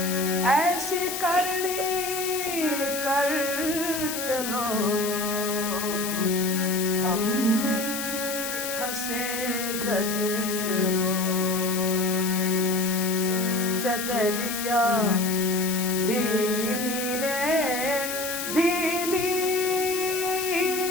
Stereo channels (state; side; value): noise; left; hiss, 5 dB below the sound